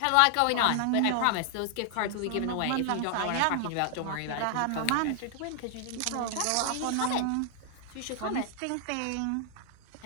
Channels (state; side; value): different; both; correlation 0.00